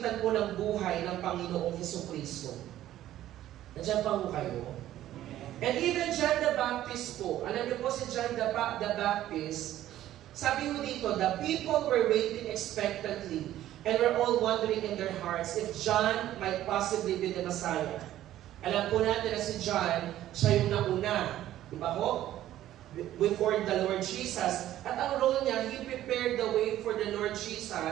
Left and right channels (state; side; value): quieter; left; 13.2 dB